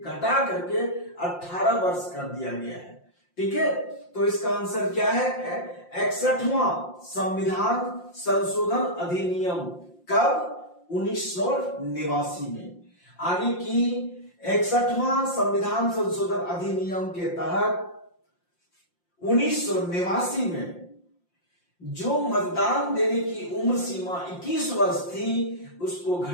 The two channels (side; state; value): right; late; 5.7 ms